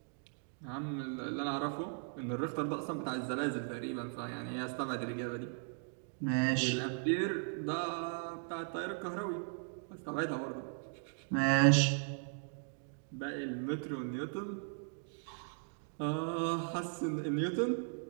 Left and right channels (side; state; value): left; silent; 53 dB below the other